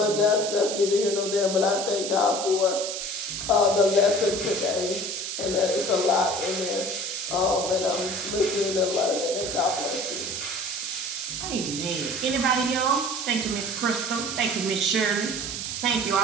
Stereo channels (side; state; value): right; noise; hiss, 4 dB below the sound